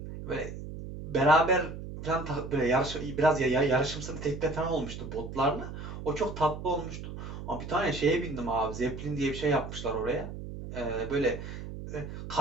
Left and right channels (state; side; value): noise; right; hum, 9 dB below the sound